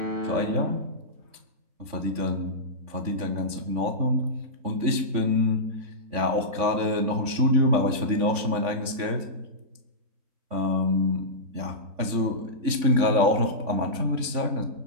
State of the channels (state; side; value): late; left; 3.5 ms